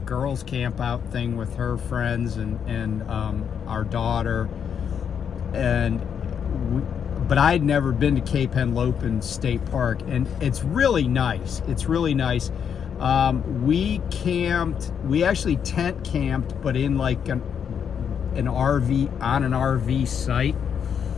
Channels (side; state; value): right; quieter; 7.7 dB